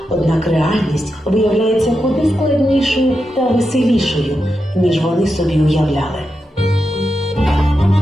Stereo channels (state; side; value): normal; both; correlation 0.88